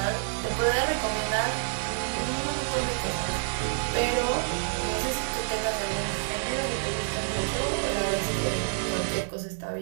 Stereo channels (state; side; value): silent; left; 59 dB below the other